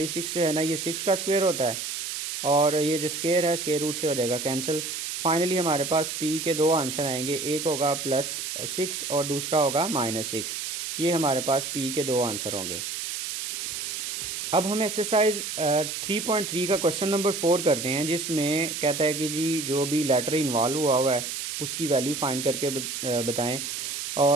जो है ना ये 6 का स्क्वायर होता है और ये जो स्क्वायर है स्क्वायर रूट से हो जाएगा कैंसिल। फाइनली हमारे पास P के दो आंसर आएंगे, एक होगा +6 और दूसरा होगा -6। ये हमारे पास P के दो आंसर होंगे। अब हम एक्सरसाइज 3.3 का क्वेश्चन नंबर 4 करते हैं, जिसमें कहता है कि जी जो भी लेटर इन्वॉल्व हुआ है उसकी वैल्यू फाइंड करके बताएं।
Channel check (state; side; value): noise; right; hiss, 5 dB below the sound